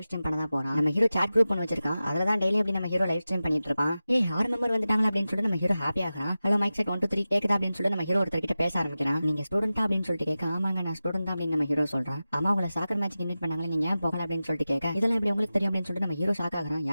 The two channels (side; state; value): both; inverted; correlation -0.95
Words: ஸ்ட்ரீம் பண்ண தான் போறான். நம்ம ஹீரோ சாட் குரூப் பண்ணி வச்சிருக்கான். அதுல தான் டெய்லி அப்படி நம்ம ஹீரோ லைவ் ஸ்ட்ரீம் பண்ணிட்டு இருப்பான். 6 மெம்பர் வந்துட்டாங்க அப்படின்னு சொல்லிட்டு நம்ம ஹீரோ ஹாப்பி ஆகிறான். ஹலோ மைக் செட் 1 2 3 கேக்குதா அப்படின்னு சொல்லிட்டு நம்ம ஹீரோ ஒருத்தர் கிட்ட பேச ஆரம்பிக்கிறான். நீங்க ஸ்டூடெண்டா அப்படின்னு சொல்லிட்டு கேட்க, ஆமாங்க நான் ஸ்டூடெண்ட் தான் அப்படின்னு நம்ம ஹீரோ சொல்றான். ஆமா உங்களை சாக்கர் மேட்ச்க்கு இன்வைட் பண்ணாங்களே, நீங்க ஏன் போகல அப்படின்னு சொல்லிட்டு கேட்க, இதெல்லாம் எப்படி உங்களுக்கு தெரியும் அப்படின்னு சொல்லிட்டு நம்ம ஹீரோ ஷாக் ஆகிறான்.